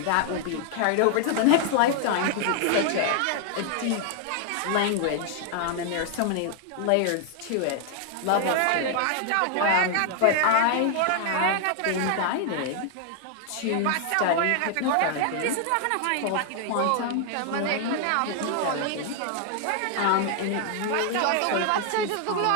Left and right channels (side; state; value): both; different; correlation 0.00